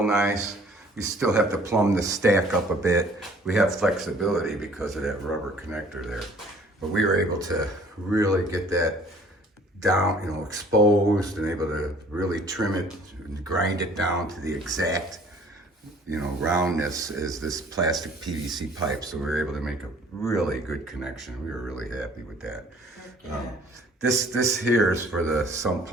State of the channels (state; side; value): normal; both; correlation 0.54